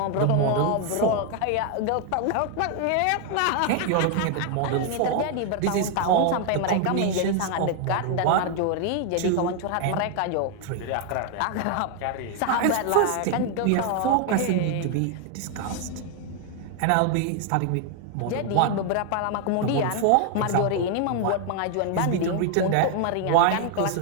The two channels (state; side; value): different; both; correlation 0.00